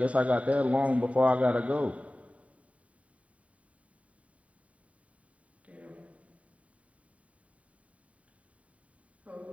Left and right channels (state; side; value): late; left; 0.066 ms